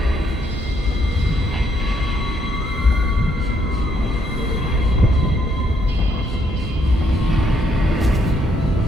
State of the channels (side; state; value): both; normal; correlation 0.72